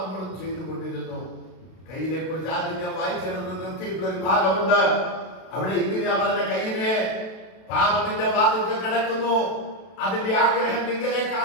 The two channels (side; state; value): right; late; 32 ms